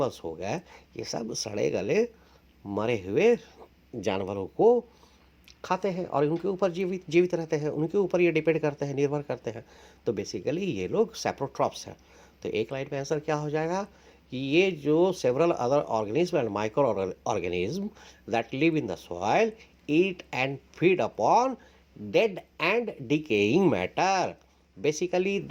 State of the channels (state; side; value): identical; both; correlation 1.00